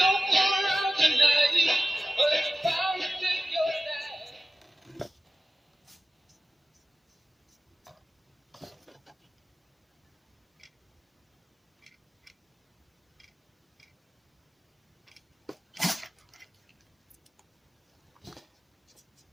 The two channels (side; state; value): both; normal; correlation 0.95